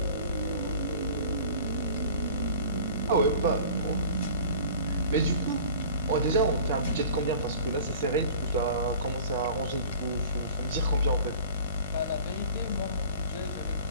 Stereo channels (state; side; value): inverted; both; correlation -0.43